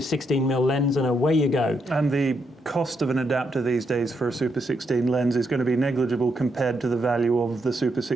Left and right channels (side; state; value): both; normal; correlation 0.79